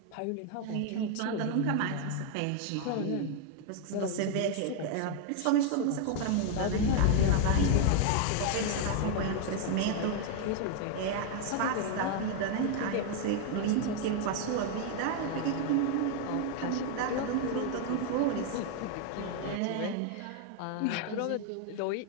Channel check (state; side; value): different; both; correlation 0.00